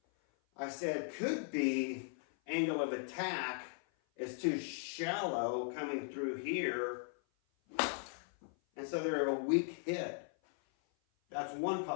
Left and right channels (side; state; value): right; silent; 52 dB below the other